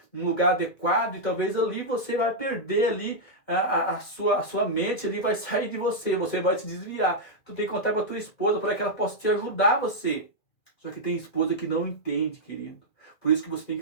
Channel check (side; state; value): right; late; 2.1 ms